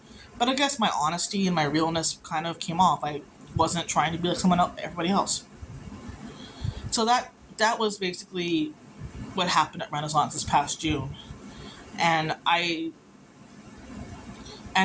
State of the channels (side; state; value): both; identical; correlation 1.00